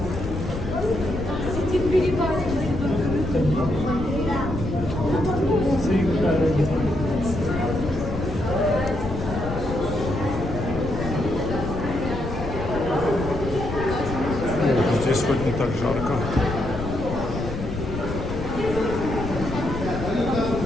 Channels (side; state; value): left; noise; rumble, 6 dB below the sound